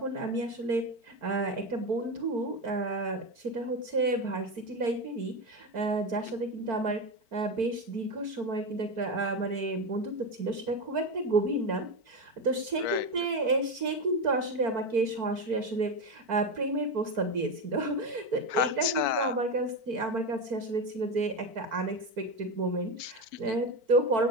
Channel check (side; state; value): left; late; 4.5 ms